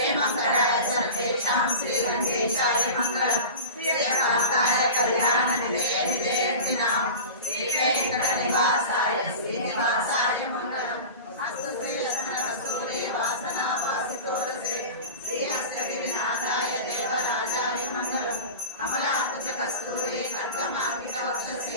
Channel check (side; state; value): both; inverted; correlation -0.32